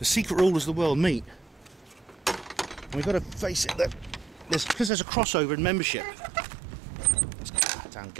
secret rulers of the world meet. And we've got to face it, that because there's a crossover in membership. Damn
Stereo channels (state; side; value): drops out; left; at 4.9 s